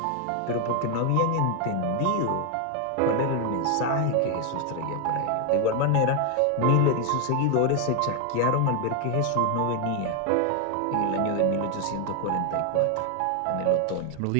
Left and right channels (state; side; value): different; both; correlation 0.01